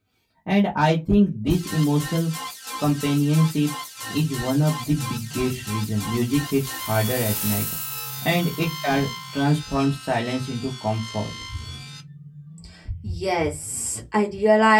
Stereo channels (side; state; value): both; identical; correlation 1.00